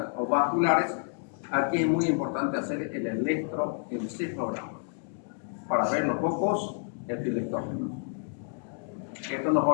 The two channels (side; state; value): right; silent; 58 dB below the other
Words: o vasculares, aquí es muy importante hacer el electroencefalograma para ver los focos epileptógicos. Esto nos